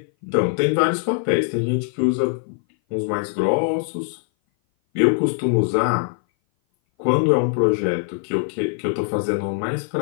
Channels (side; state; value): right; silent; 58 dB below the other